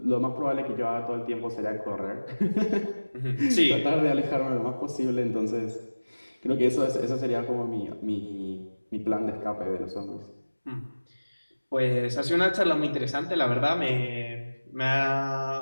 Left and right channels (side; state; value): both; inverted; correlation -1.00